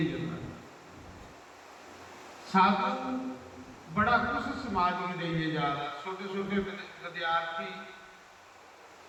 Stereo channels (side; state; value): both; identical; correlation 1.00